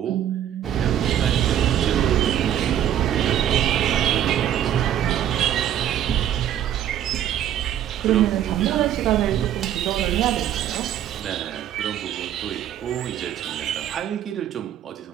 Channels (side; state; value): left; quieter; 10.8 dB